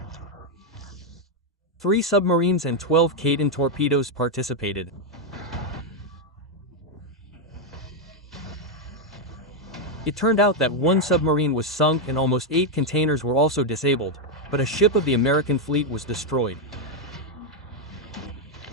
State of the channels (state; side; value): normal; both; correlation 0.02